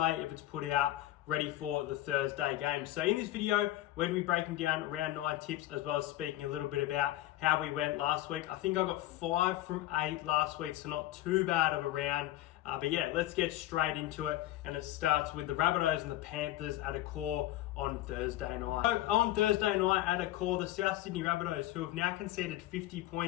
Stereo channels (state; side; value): quieter; right; 15.2 dB